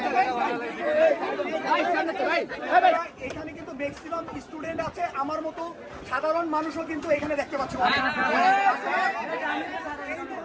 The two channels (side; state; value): both; identical; correlation 1.00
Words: এখানে কিন্তু ম্যাক্সিমাম স্টুডেন্ট আছে, আমার মতো সাধারণ মানুষও কিন্তু এখানে দেখতে পাচ্ছি। এই